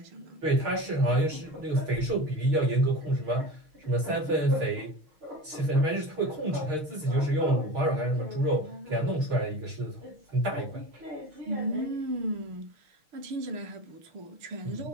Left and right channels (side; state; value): left; late; 6.4 ms